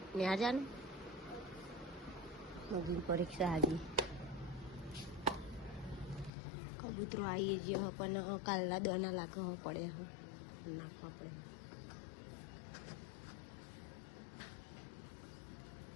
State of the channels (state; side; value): drops out; right; at 6.3 s